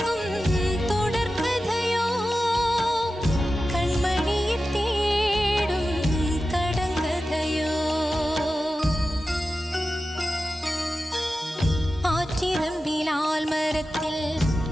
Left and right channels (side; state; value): both; normal; correlation 0.93